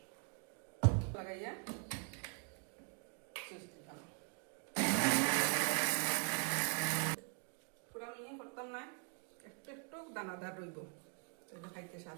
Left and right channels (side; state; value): left; quieter; 39.3 dB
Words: লাগাইয়া সুইচ দিলাম। পুরা মিহি করতাম না, একটু একটু দানাদার রইব, এটা খাইতে